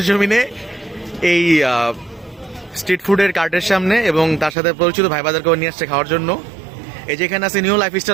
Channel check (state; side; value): drops out; left; at 4.5 s